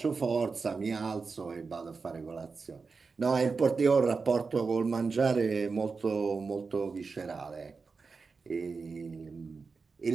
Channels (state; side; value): quieter; left; 4.7 dB